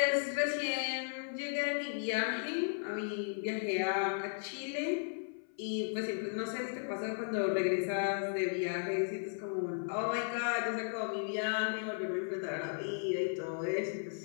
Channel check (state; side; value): silent; right; 54 dB below the other